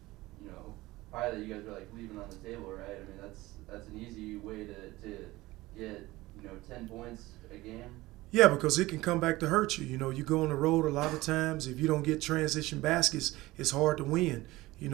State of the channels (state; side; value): quieter; left; 19.0 dB